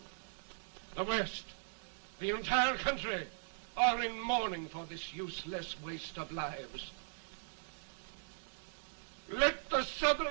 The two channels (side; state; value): left; silent; digital silence